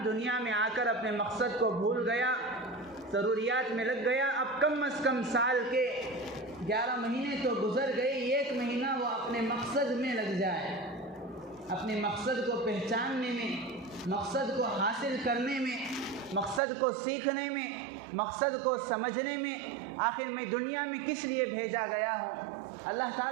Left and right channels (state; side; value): drops out; left; at 16.6 s